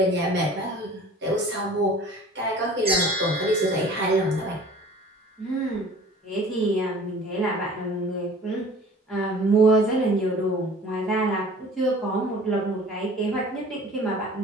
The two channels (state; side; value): normal; both; correlation 0.46